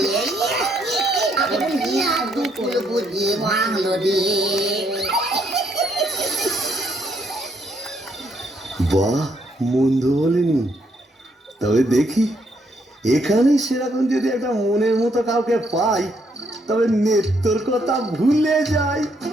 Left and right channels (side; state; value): both; normal; correlation 0.73